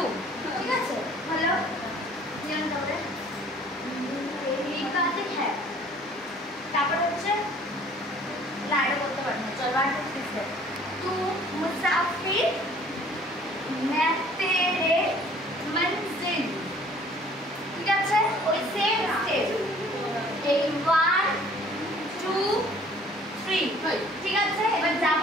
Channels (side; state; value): both; normal; correlation 0.54